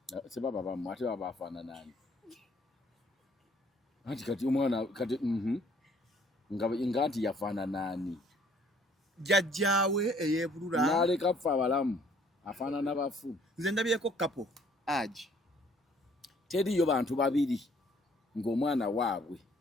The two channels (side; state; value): both; normal; correlation 0.61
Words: sebaba bamu ate baba afana nani ati kati omwana kati ngati yafana nani jajjawe eyebulura naleka fa abalamu afana n'abafu nze ndabyeko kapo aji teriyo bantu babiri ng'omwana waabwe